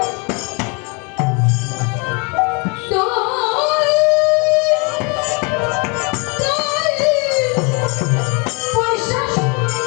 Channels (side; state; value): right; quieter; 32.1 dB